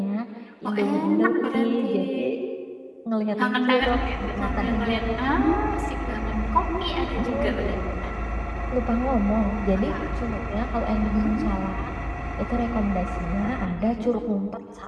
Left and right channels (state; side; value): identical; both; correlation 1.00